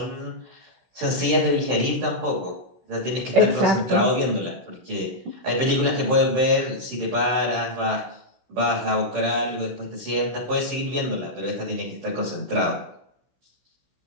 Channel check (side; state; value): left; late; 16 ms